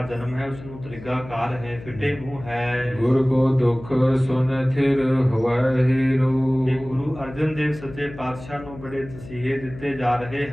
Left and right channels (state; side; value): noise; left; hum, 16 dB below the sound